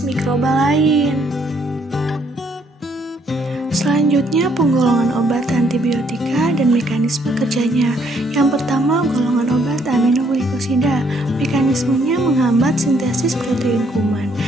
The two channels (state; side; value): normal; both; correlation 0.68